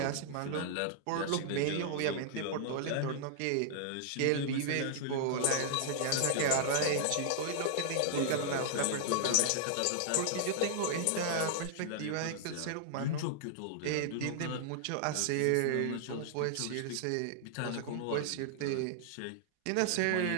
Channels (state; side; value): different; both; correlation -0.01